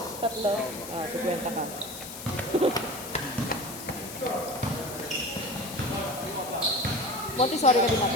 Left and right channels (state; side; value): noise; left; hiss, 11 dB below the sound